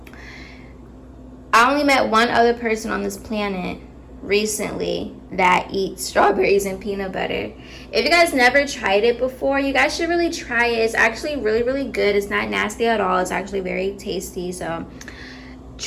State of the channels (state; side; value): identical; both; correlation 1.00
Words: I only met one other person on this planet recently that eats strawberries and peanut butter. If you guys never tried it before, you guys should really try it. It's actually really, really good. It's not nasty at all. It's actually very tasty. So